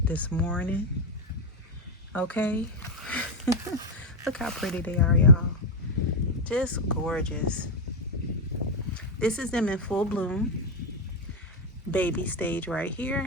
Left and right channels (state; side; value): normal; both; correlation 0.05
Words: this morning. Okay. Look how pretty they are, y'all. Just gorgeous. This is them in full bloom. Baby stage right